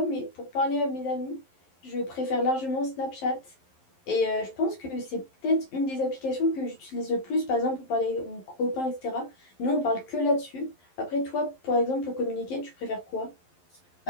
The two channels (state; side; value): late; right; 11 ms